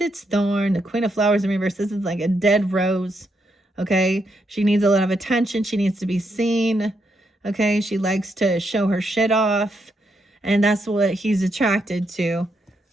its thorn. The Queen of Flowers in reverse. This is like a dead rose. Okay, she needs a lot of attention. She needs to be seen. Okay, she likes to show her shit off, and that's what he's attracted to.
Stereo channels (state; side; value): normal; both; correlation 0.79